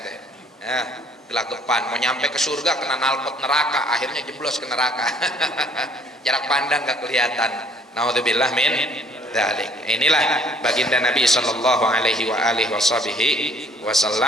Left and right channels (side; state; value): both; normal; correlation 0.59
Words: Ya, gelagapan mau nyampe ke surga kena knalpot neraka, akhirnya jeblos ke neraka. Jarak pandang gak kelihatan. Naudzubillah min dzalik. Inilah baginda Nabi sallallahu alaihi